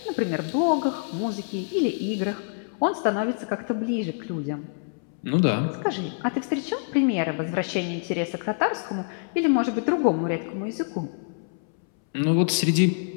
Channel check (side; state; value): right; silent; 61 dB below the other